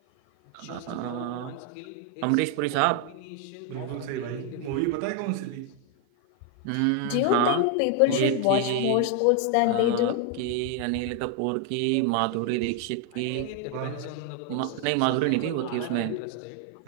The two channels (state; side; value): different; both; correlation 0.00